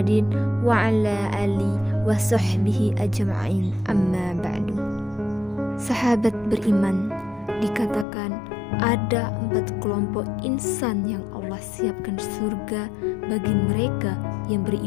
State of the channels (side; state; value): right; drops out; at 8.1 s